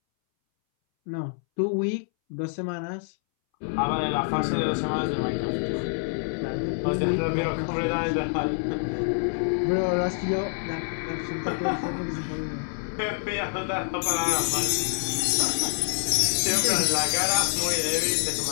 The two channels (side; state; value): right; silent; 61 dB below the other